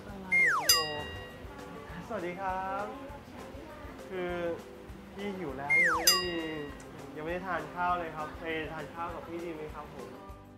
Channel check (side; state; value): both; identical; correlation 1.00